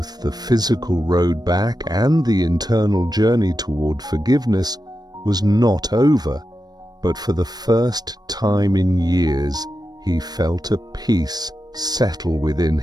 the physical road back and the internal journey toward forgiveness, was not over, but for the first time in years, he felt a peace settle within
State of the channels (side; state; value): left; late; 0.19 ms